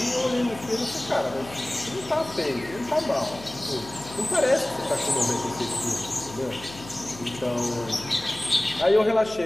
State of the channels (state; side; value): noise; left; hum, 16 dB below the sound